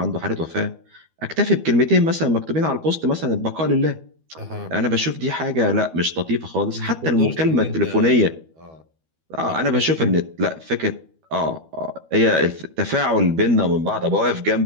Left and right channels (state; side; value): late; left; 12 ms